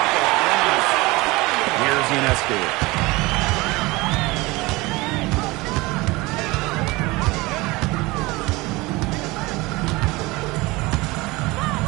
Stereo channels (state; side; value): quieter; left; 22.3 dB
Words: of the Here's Ionescu.